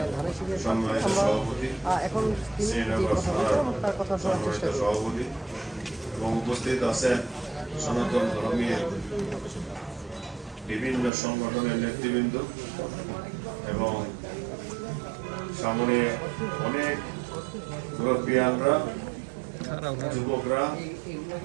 আমরা এখন তিনি যে কথা বলছেন তার কথা শোনার চেষ্টা করি। এবং উপস্থিত আছেন সনাতন ধর্মীয় বিভিন্ন সংগঠনের নেতৃবৃন্দ এবং সামনে অনেক মুরব্বিয়ানরা, যুবকরা,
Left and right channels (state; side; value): drops out; left; at 11.1 s